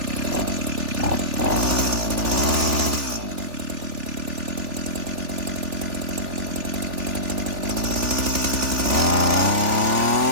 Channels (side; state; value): left; late; 3.4 ms